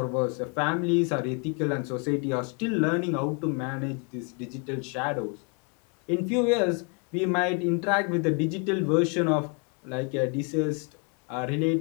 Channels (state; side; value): quieter; right; 35.6 dB